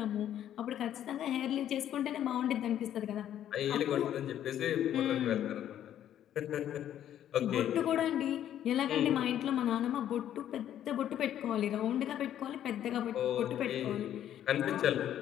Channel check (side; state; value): right; quieter; 11.0 dB